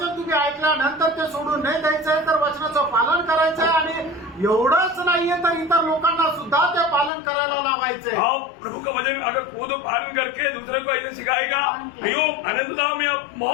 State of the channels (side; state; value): right; drops out; at 7.1 s